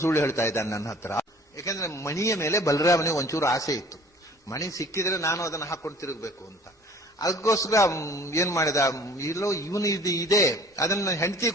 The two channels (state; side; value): normal; both; correlation 0.50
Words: ಸುಳ್ಳು ಹೇಳ್ತಾ ಇದ್ದಾನೆ ನನ್ನ ಹತ್ರ. ಯಾಕಂದ್ರೆ ಮಣಿಯ ಮೇಲೆ ಬಲರಾಮನಿಗೆ ಒಂಚೂರು ಆಸೆ ಇತ್ತು, ಮಣಿ ಸಿಕ್ಕಿದ್ರೆ ನಾನು ಅದನ್ನು ಹಾಕೊಂಡು ತಿರುಗಬೇಕು ಅಂತ. ಅದಕ್ಕೋಸ್ಕರ ಏನ್ ಮಾಡಿದ, ಇಲ್ಲೋ ಇವನು ಇದೆ, ಅದನ್ನ ಹೆಂಡತಿ